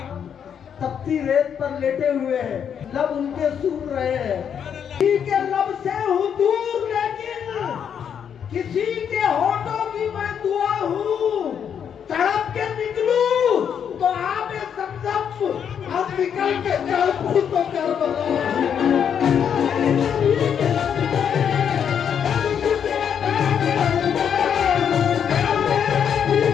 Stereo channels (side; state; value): right; quieter; 8.1 dB